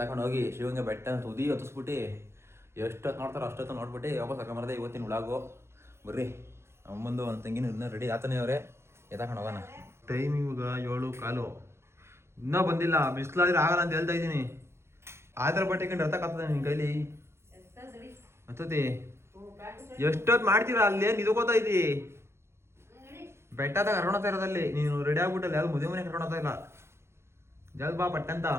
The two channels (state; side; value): late; left; 0.13 ms